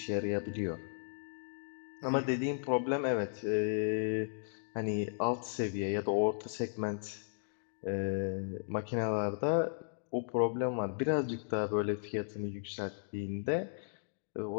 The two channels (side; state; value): right; silent; digital silence